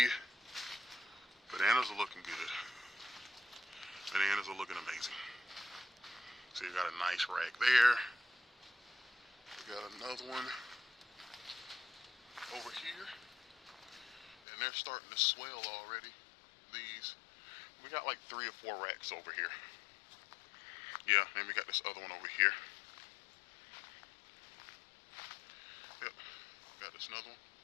bananas are looking good. Bananas are looking amazing. So you got a nice rack there. We got another one over here. And they're starting to swell already. These, we got like 3 or 4 racks over here. Yeah, and we got this other one over here. Yep, got this another one.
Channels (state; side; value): drops out; right; at 14.4 s